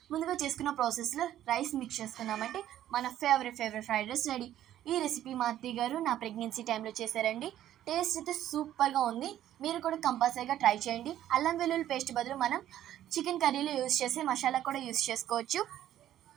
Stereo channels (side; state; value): left; quieter; 12.1 dB